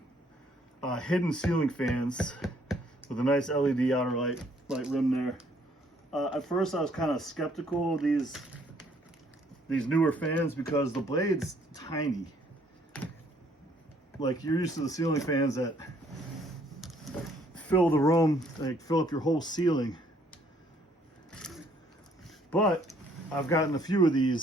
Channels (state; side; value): normal; both; correlation 0.64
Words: hidden ceiling fans with a nice LED outer light rim there. At first I was kind of skeptical of these newer fans because the blade's tiny. Like, you're used to the ceiling fans that fill the room, like fill up your whole ceiling. But I've gotten a few of